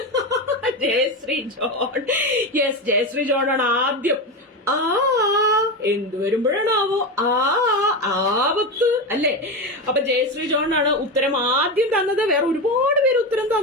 Jayashree John. Yes, Jayashree John ആണ് ആദ്യം. എന്ത് വരുമ്പോഴാണാവോ? ആപത്ത് അല്ലേ? അപ്പൊ ജയശ്രീ ജോൺ ആണ് ഉത്തരം ആദ്യം തന്നത്. വേറെ ഒരുപാട് പേര് ഉത്തരം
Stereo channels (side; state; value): both; normal; correlation 0.17